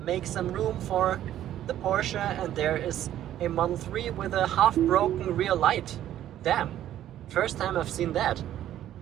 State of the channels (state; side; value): quieter; left; 12.0 dB